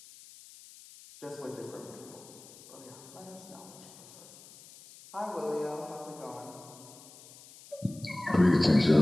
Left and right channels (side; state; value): left; noise; hiss, 20 dB below the sound